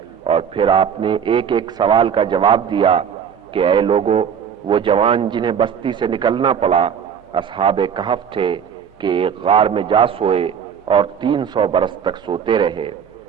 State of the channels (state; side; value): quieter; left; 7.8 dB